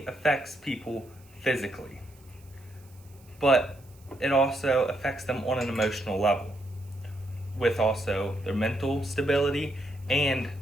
affects people physically, but it also affects them on an emotional level, with also their mental stability and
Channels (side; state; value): right; noise; hiss, 28 dB below the sound